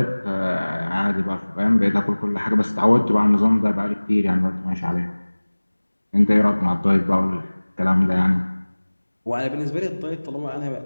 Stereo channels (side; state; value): both; inverted; correlation -1.00